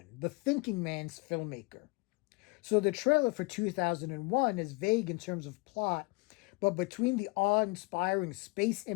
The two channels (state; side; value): quieter; right; 28.2 dB